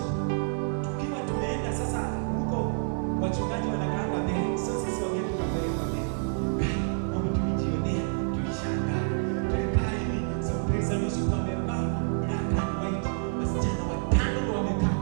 Tukiwa tumeenda sasa huko wachungaji wanakaanga mbele. So sisi wageni tukapeleka mbele. Mambo tulijionea, tulishangaa. Tulikaa hivi, so praise and worship wamevaa black and white. Wasichana watano ndio wamekaa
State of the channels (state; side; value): silent; left; 59 dB below the other